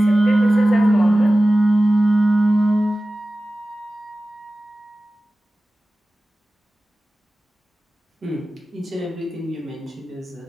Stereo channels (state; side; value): normal; both; correlation 0.96